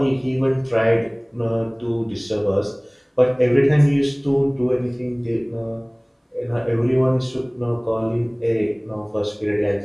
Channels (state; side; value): identical; both; correlation 1.00